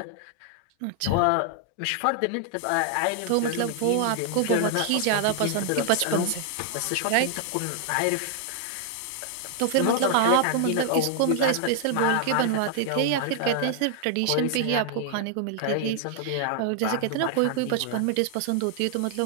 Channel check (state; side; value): different; both; correlation 0.00